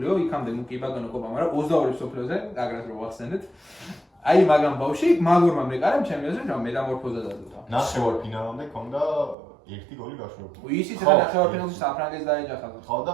იქამდე კი ბატონო კოპა, მაგრამ 22 სოფლიოზე აგრეთ რო ვახსენეთ. აი მაგან ბავში მაგურმა მეკარემ ჩემი აზრით რომ მეტამორფოზა დადუდა. ნახევარფინალამდე ჰქონდა ერთი გოლი გაშვებული. ისიც რა ნახევარფინალში საფრანგეთს დაეჯახა. ხო და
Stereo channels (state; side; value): drops out; left; at 9.3 s